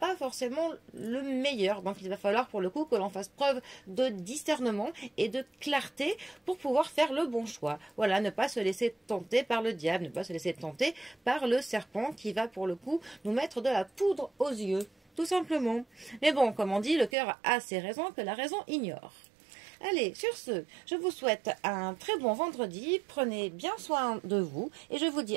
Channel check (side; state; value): left; drops out; at 17.1 s